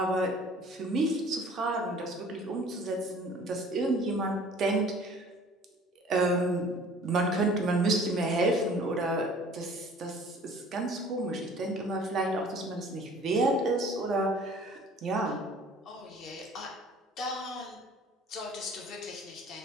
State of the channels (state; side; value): normal; both; correlation 0.50